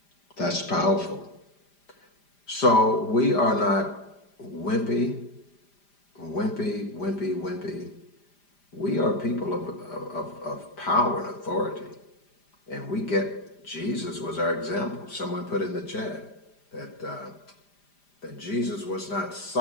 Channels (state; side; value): late; right; 5.0 ms